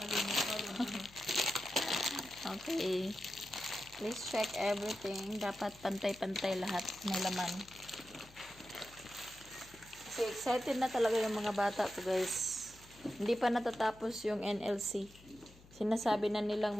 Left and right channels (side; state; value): left; noise; hum, 23 dB below the sound